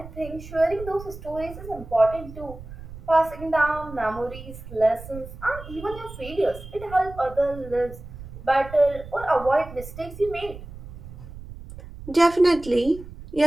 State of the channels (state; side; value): noise; right; rumble, 14 dB below the sound